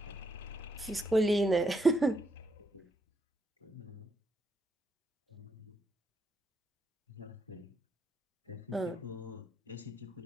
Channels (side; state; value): both; normal; correlation 0.77